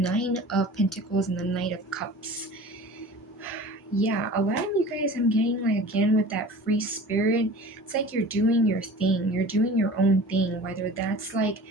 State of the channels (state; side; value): normal; both; correlation 0.40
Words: of Pentacles and the Knight of Cups. Yeah, a lot of you guys, I'm getting like, again, with that free spirit, it's like you're doing your thing, you're doing your own thing, whether that's like